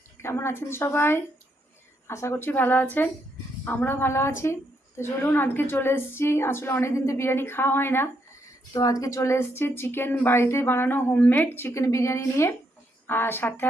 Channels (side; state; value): both; normal; correlation 0.77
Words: কেমন আছেন সবাই? আশা করছি ভালো আছেন। আমরাও ভালো আছি। তো চলুন, আজকে চলে এসেছি। আসলে অনেক দিন তো বিরিয়ানি খাওয়া হয় না, তো আজকে চলে এসেছি চিকেন বাড়িতে বানানো হোমমেড চিকেন বিরিয়ানি নিয়ে। আর সাথে